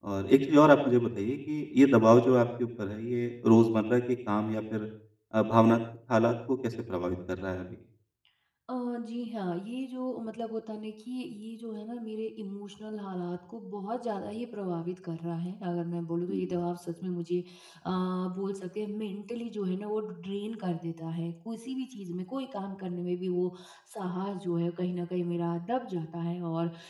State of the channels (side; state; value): both; identical; correlation 1.00